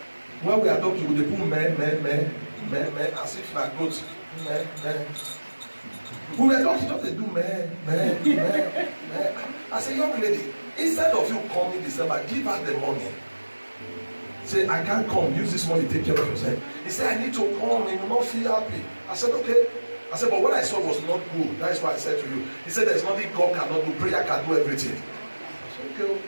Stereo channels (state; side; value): inverted; both; correlation -1.00